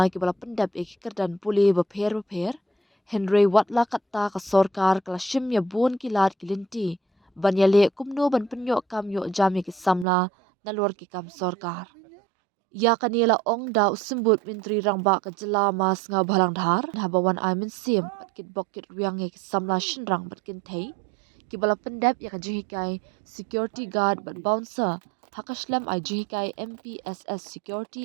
ki bala pendap ya ki kerdan puli bapher. Henry watla katta ka sorkar kala shim ya bun ki lat ki linti. Ban ya le kumno ban penyok kam yo jam ya ki samla nalor ki kam sorkar. Ya kanila ong da usimbut menteri rangba ka jela mas nga balang dhar habawan ai min sim kit bokit riang ya ki samla shinrang batkin thei. Ki bala pendap ya ka jihikai security guard bat bouncer Hakashlam IGKI MPSS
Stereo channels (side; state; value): left; drops out; at 10.1 s